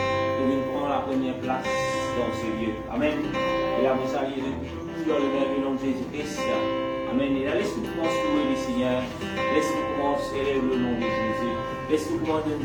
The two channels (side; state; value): both; identical; correlation 1.00